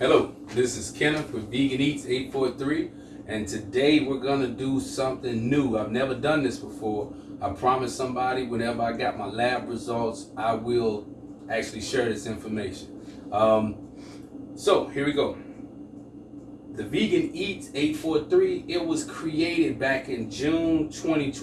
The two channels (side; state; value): both; identical; correlation 1.00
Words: this is Kenneth with Vegan Eats 843, and today we're gonna do something new. I've never done this before. I promised somebody whenever I got my lab results, I will actually share this information. So here we go. The Vegan Eats 843, it was created back in June